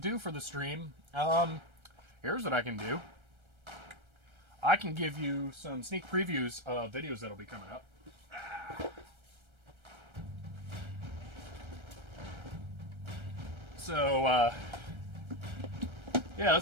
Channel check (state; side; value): late; left; 1.3 ms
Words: for the stream. Here's what I can do. I can give you some sneak previews of videos that'll be coming up. So, yeah,